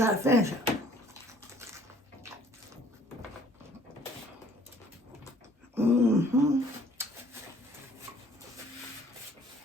to finish it. Mm-hmm.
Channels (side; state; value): both; normal; correlation 0.57